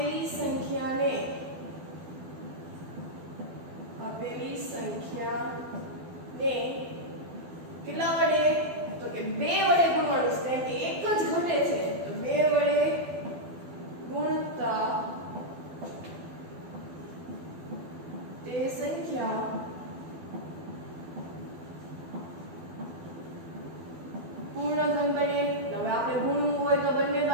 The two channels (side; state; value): left; late; 12 ms